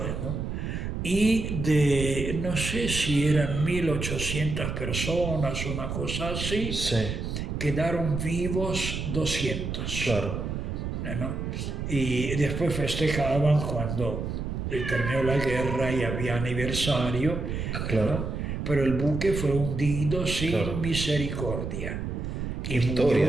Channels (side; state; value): right; noise; rumble, 4 dB below the sound